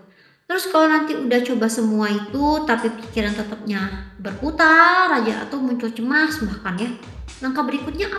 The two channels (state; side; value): identical; both; correlation 1.00